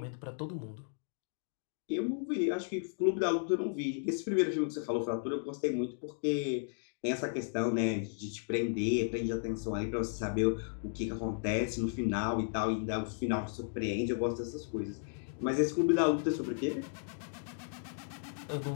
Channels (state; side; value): silent; right; digital silence